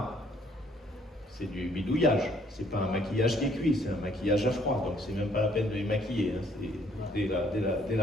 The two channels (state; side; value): normal; both; correlation 0.64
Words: C'est du bidouillage, c'est pas un maquillage qui est cuit, c'est un maquillage à froid, donc c'est même pas la peine de les maquiller. Hein. Dès